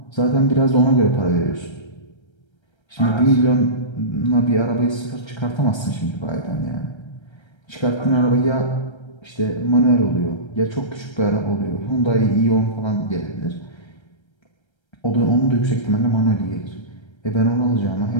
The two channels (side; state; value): right; late; 1.3 ms